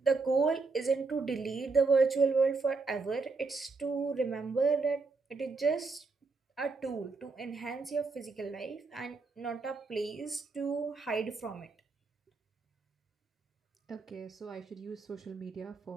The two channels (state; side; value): quieter; left; 4.0 dB